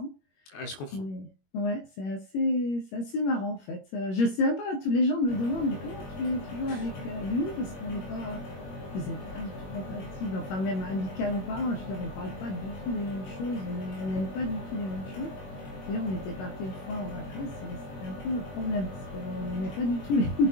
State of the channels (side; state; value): right; late; 21 ms